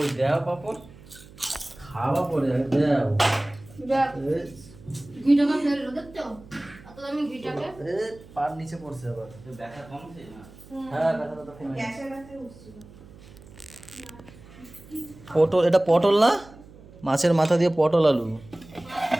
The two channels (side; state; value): right; noise; hum, 21 dB below the sound